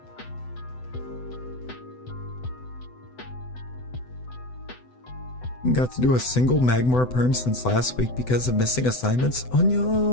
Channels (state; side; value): late; right; 7.9 ms